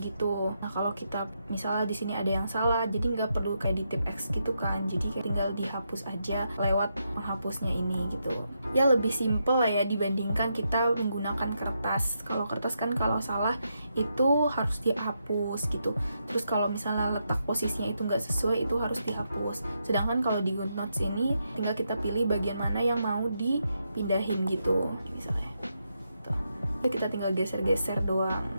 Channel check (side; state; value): both; inverted; correlation -0.82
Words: gitu. Nah kalau kita misalnya di sini ada yang salah, jadi nggak perlu kayak di tip X gitu kan. Jadi kayak tinggal dihapus aja lewat penghapusnya ini gitu. Ya lebih simple lah ya dibandingkan kita menggunakan kertas. Kalau kertas kan kalau salah itu harus dihapus gitu. Terus kalau misalnya letak posisinya itu nggak sesuai, itu harus dihapus. Sedangkan kalau di GoodNotes ini tinggal kita pilih bagian mana yang mau dipindahin gitu misalnya tuh. Kita tinggal geser-geser doang.